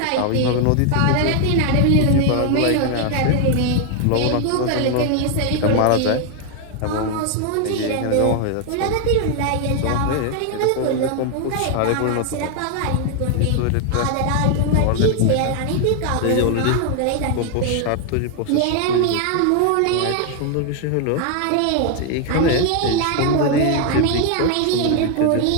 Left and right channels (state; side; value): different; both; correlation 0.00